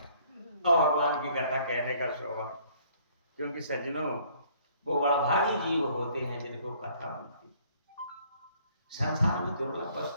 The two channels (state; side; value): inverted; both; correlation -0.60